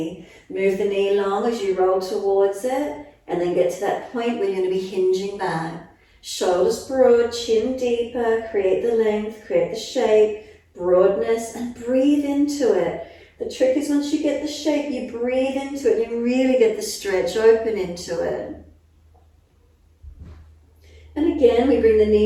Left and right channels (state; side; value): identical; both; correlation 1.00